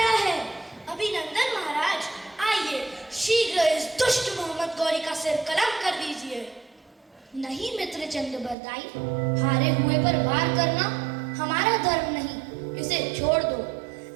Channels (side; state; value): left; drops out; at 8.6 s